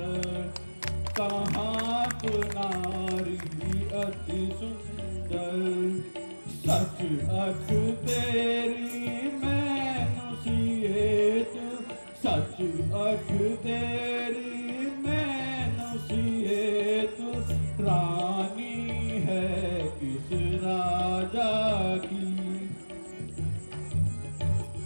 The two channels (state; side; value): inverted; both; correlation -1.00